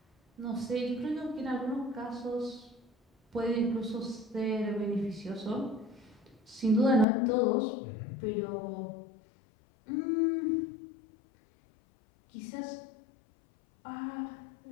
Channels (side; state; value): right; drops out; at 7.1 s